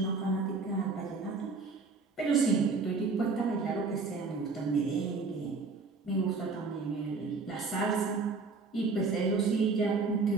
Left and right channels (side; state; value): left; quieter; 4.2 dB